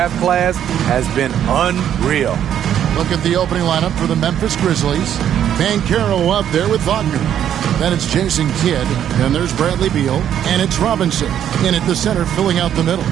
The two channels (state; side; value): quieter; left; 10.0 dB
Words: class has been unreal. Look at the opening lineup for the Memphis Grizzlies. Banchero up there with Wagner. Then it's Jason Kidd. Then there's Bradley Beal. And it's Robinson in at the center, filling out the middle.